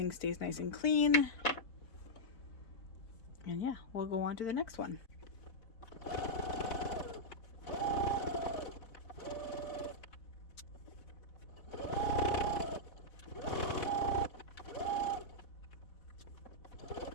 stays nice and clean. And yeah, we'll go on to the next one.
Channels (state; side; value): late; right; 4.1 ms